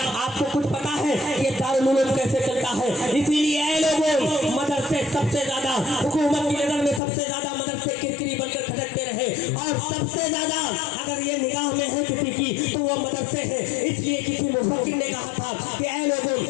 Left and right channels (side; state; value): right; drops out; at 7.0 s